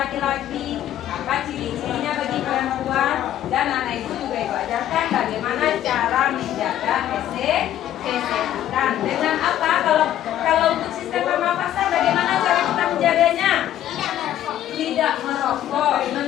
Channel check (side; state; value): right; quieter; 12.0 dB